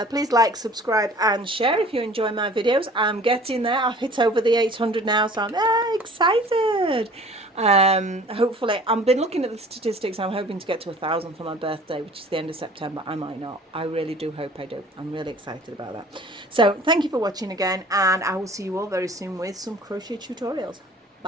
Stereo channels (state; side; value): normal; both; correlation 0.48